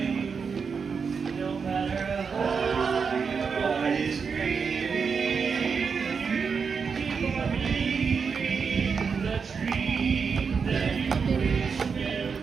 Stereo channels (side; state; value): left; quieter; 5.7 dB